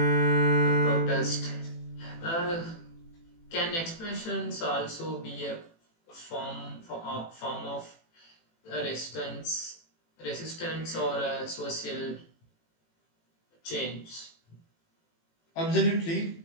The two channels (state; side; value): late; right; 18 ms